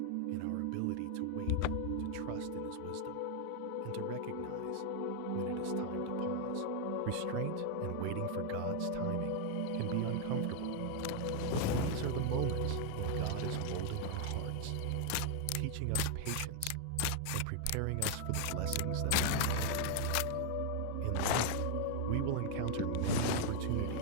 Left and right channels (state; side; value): different; both; correlation 0.00